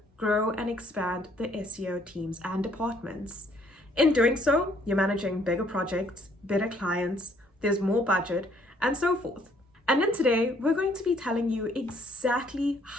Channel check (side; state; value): both; normal; correlation 0.64